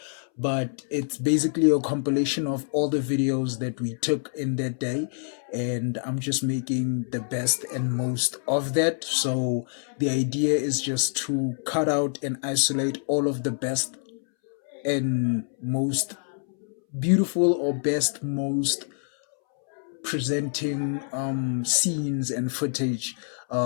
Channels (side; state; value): right; silent; 61 dB below the other